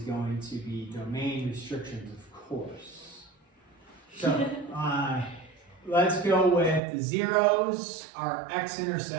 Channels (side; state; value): left; drops out; at 6.8 s